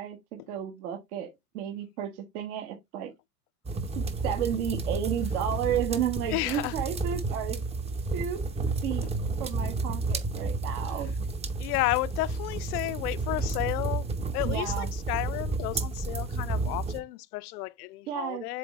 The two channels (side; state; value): both; normal; correlation 0.32